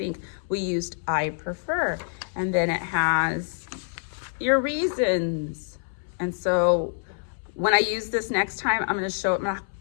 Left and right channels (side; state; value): right; silent; 61 dB below the other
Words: We used I prefer, and then it has your reasons. And so when I use this next time, I'm going to show it